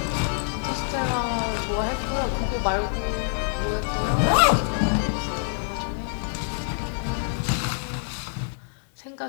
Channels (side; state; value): right; silent; digital silence